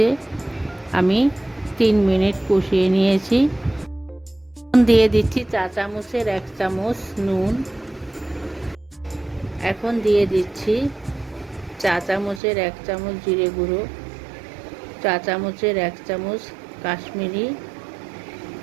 আমি 3 মিনিট কষিয়ে নিয়েছি। দিয়ে দিচ্ছি চা চামচের 1 চামচ নুন। এখন দিয়ে দিচ্ছি চা চামচের 1 চামচ জিরে গুঁড়ো, চা চামচের 1 চামচ কাশ্মীরি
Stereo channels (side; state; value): left; drops out; at 12.4 s